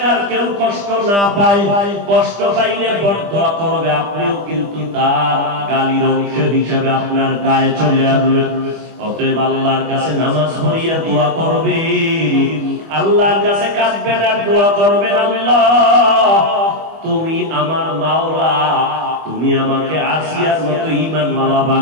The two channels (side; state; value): left; late; 25 ms